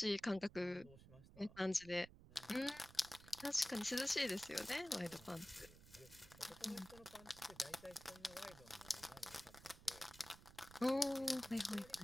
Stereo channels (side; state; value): right; noise; rumble, 19 dB below the sound